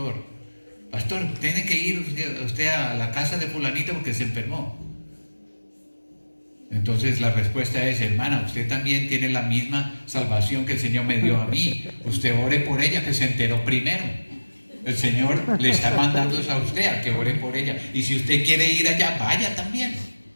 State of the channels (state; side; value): inverted; both; correlation -1.00